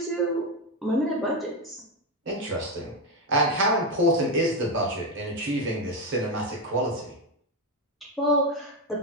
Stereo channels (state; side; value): normal; both; correlation 0.10